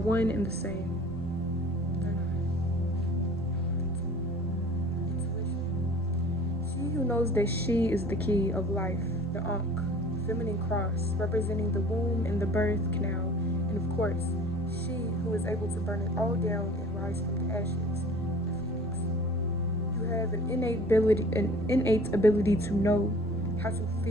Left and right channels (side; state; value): both; normal; correlation 0.46